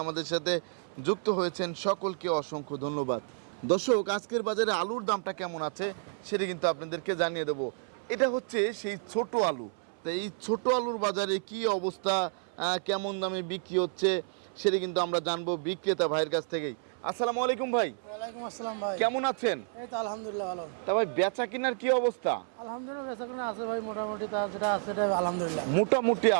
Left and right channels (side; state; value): left; silent; 57 dB below the other